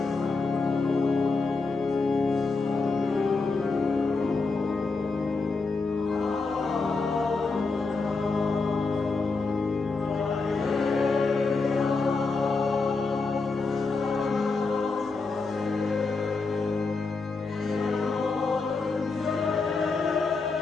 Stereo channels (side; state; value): right; quieter; 4.0 dB